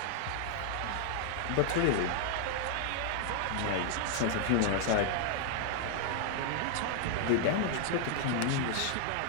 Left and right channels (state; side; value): different; both; correlation -0.01